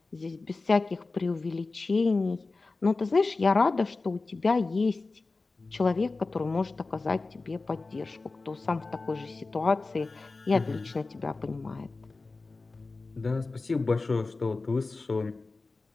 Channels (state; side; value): quieter; right; 3.6 dB